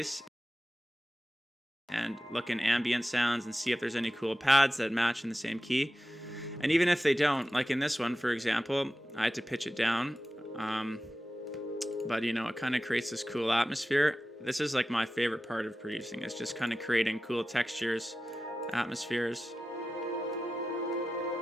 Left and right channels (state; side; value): normal; both; correlation 0.94